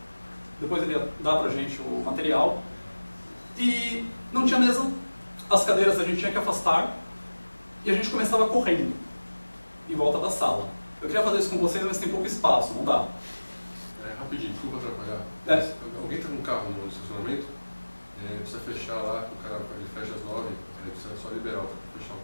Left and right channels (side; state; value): both; inverted; correlation -1.00